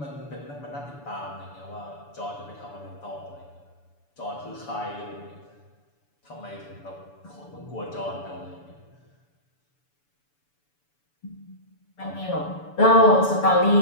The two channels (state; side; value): late; right; 6.9 ms